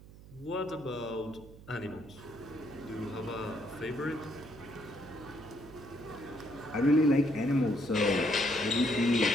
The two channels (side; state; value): right; noise; hum, 19 dB below the sound